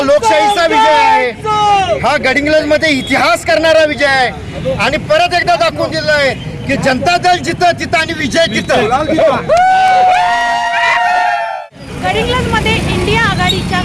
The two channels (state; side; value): identical; both; correlation 1.00